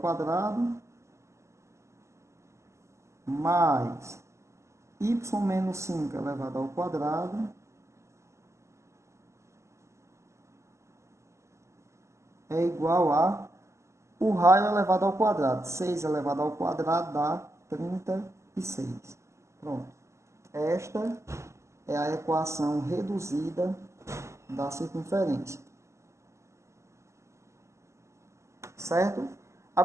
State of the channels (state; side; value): late; left; 0.14 ms